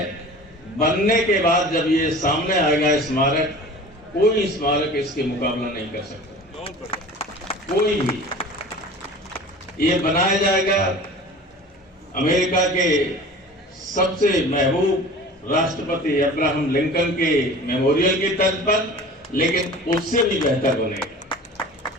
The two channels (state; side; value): normal; both; correlation 0.40